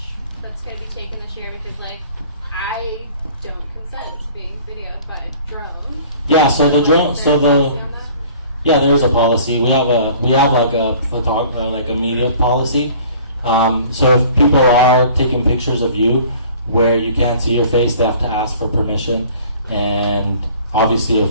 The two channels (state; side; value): inverted; both; correlation -0.50